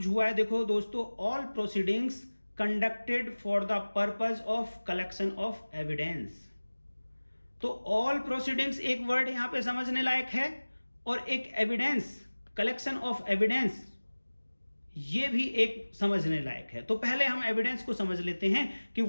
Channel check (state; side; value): inverted; both; correlation -1.00